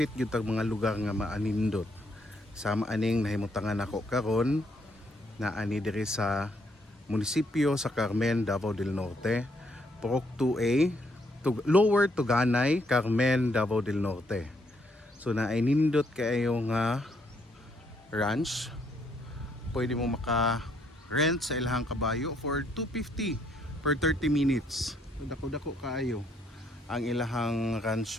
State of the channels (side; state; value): both; normal; correlation 0.71